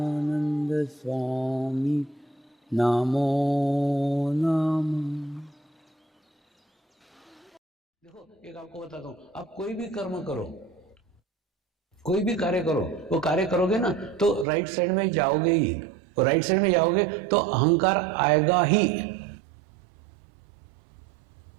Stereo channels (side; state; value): left; drops out; at 14.5 s